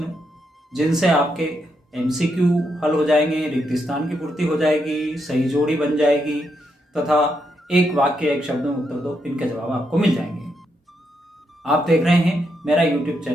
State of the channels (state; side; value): normal; both; correlation 0.80